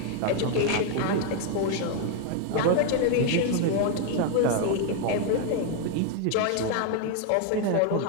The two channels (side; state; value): both; different; correlation 0.00